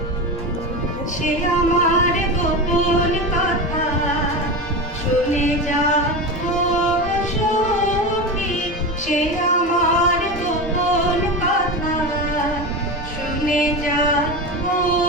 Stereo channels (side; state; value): both; normal; correlation 0.22